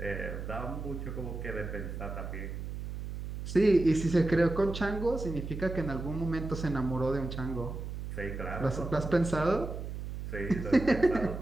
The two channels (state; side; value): noise; right; hum, 7 dB below the sound